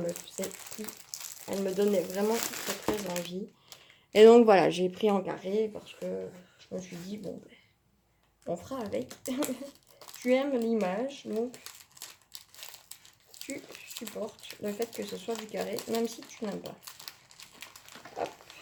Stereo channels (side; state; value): both; identical; correlation 1.00